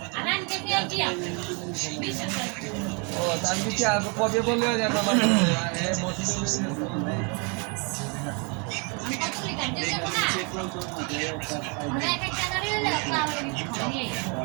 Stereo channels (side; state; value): left; quieter; 34.0 dB